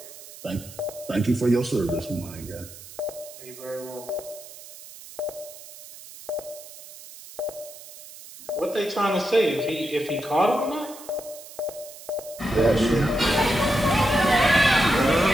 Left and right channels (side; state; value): right; noise; hiss, 16 dB below the sound